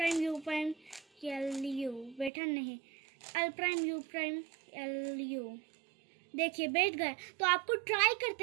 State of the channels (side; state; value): left; drops out; at 2.3 s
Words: U prime L U, बैठा नहीं, L prime U prime L U. देखिए बैठ गए। तो आपको ट्राई